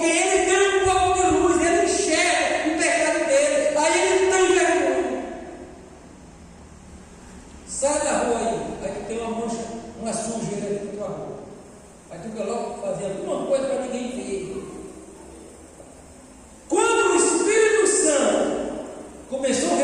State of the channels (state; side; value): identical; both; correlation 1.00